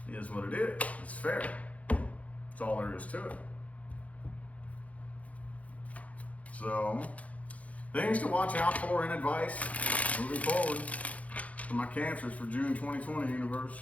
It is what it is. It's fair. That's all there is to it. So, things to watch out for and advice moving forward for my Cancers for June 2020,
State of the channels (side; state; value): right; late; 0.067 ms